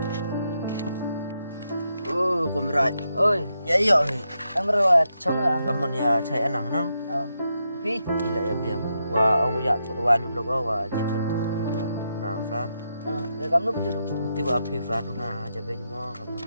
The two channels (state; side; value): inverted; both; correlation -0.84